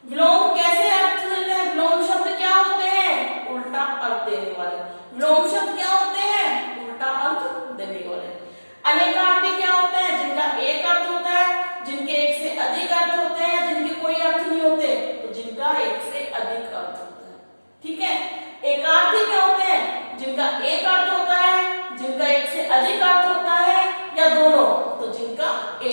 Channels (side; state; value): both; inverted; correlation -1.00